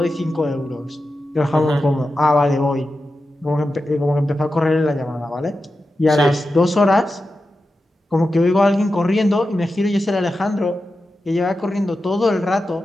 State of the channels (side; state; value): both; normal; correlation 0.91